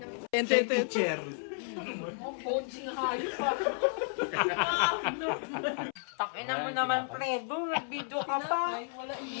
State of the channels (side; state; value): right; silent; 56 dB below the other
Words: Chair. Takinan mo naman, Fredo. Nag-video ka pa.